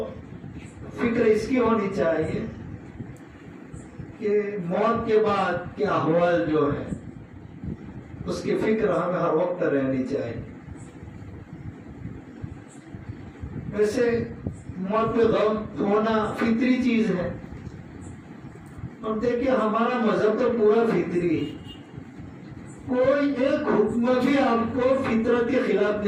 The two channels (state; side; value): identical; both; correlation 1.00